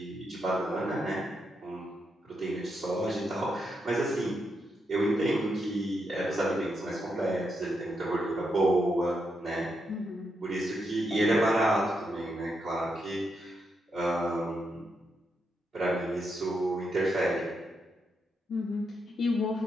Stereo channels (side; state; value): both; normal; correlation 0.82